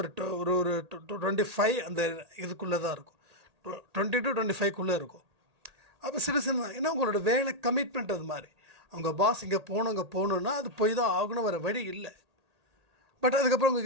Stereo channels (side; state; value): left; late; 1.8 ms